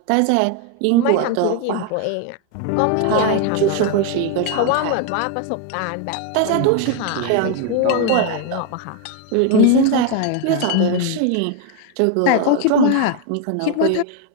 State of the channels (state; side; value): different; both; correlation 0.00